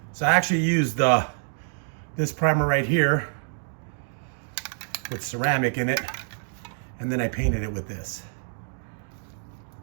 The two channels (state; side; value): silent; left; digital silence